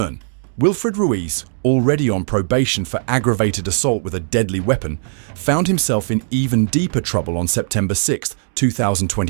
Wilfred Ruiz, already on probation for aggravated assault with a deadly weapon, found himself in even deeper trouble on September 6,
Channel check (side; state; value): left; silent; digital silence